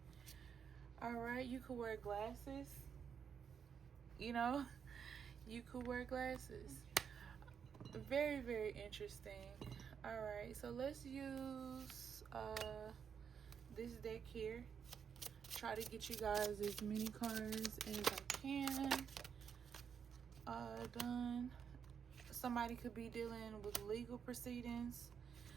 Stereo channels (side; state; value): left; quieter; 7.2 dB